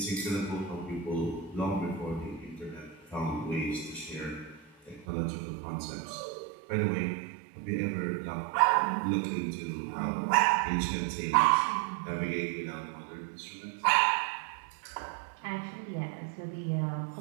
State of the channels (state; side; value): drops out; left; at 5.1 s